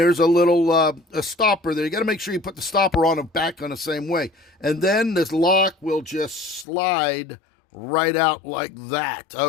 a little a stopper there. You got to make sure you put the stopper on and back on the same way. And then this lock will just slide right out like that,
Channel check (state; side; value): drops out; right; at 6.7 s